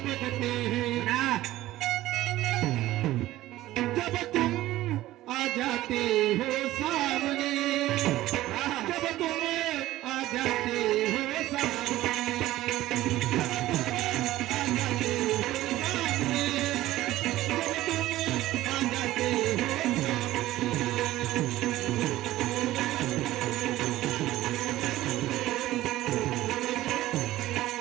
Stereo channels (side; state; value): left; quieter; 15.7 dB